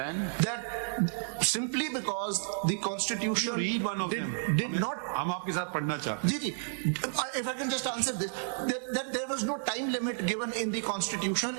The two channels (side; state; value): left; silent; digital silence